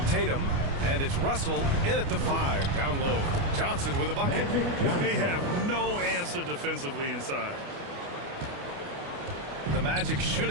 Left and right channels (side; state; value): left; late; 29 ms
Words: Tatum. And it's Russell in at the 5, down low. Johnson with a bucket. They have no answer defensively inside. The Magic